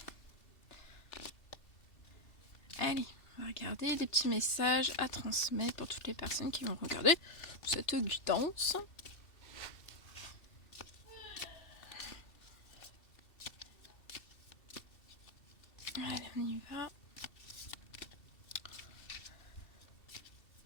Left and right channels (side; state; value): right; late; 2.7 ms